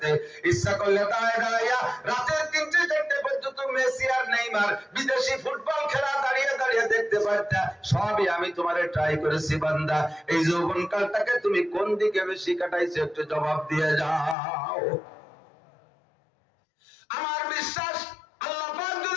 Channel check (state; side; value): drops out; right; at 14.4 s